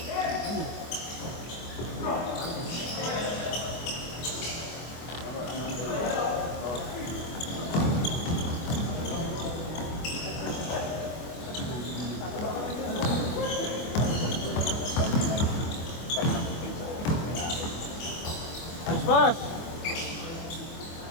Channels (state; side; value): late; right; 24 ms